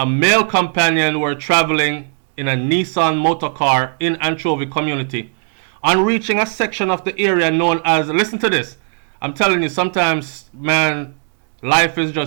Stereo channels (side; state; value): left; silent; digital silence